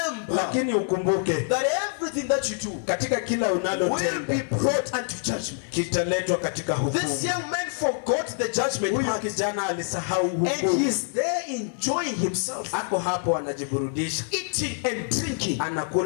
lakini ukumbuke, that everything that you do, katika kila unalotenda, will be brought unto judgment. Kitaletwa katika hukumu. This young man forgot the judgment. Huyu kijana alisahau hukumu. And he is there enjoying himself. Ako hapo anajiburudisha. Eating and drinking.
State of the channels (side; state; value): right; silent; 61 dB below the other